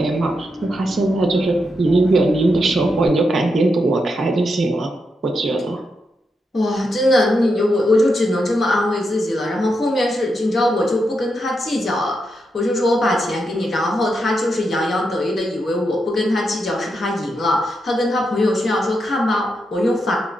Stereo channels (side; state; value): both; normal; correlation 0.84